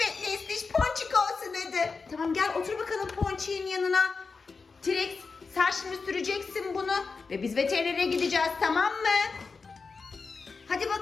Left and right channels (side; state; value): right; quieter; 4.6 dB